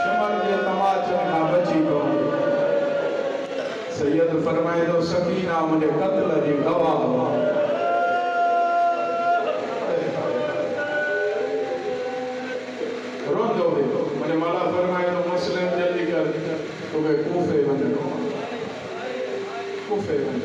سید فرمائے دو سکینہ مجھے قتل جی گواہ رون دو بھی مجھے مولا فرمائے دو مسلم جلدی کر تو کہ کوفے بندے کوفے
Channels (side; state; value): both; identical; correlation 1.00